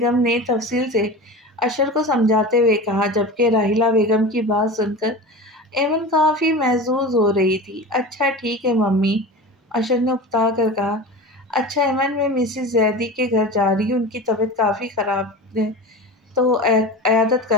نے تفصیل سے اشر کو سمجھاتے ہوئے کہا، جبکہ راحیلہ بیگم کی بات سن کر ایمن کافی محظوظ ہو رہی تھی۔ اچھا ٹھیک ہے ممی، اشر نے اکتا کر کہا۔ اچھا ایمن، میں مسز زیدی کے گھر جا رہی ہوں، ان کی طبیعت کافی خراب ہے تو عیادت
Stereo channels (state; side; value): normal; both; correlation 0.31